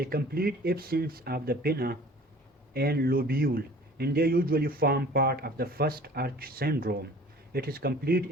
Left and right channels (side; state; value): both; normal; correlation 0.47